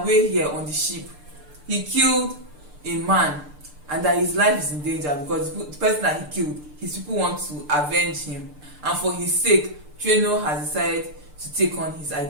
here on the ship, he killed a man and that his life is in danger because the person that he killed, his people want to avenge him, and for his sake, Treno has decided to take on his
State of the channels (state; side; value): late; left; 6.7 ms